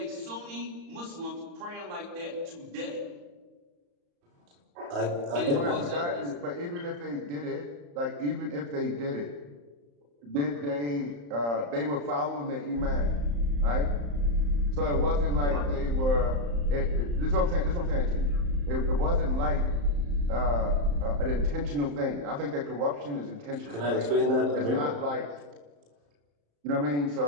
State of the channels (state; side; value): late; left; 35 ms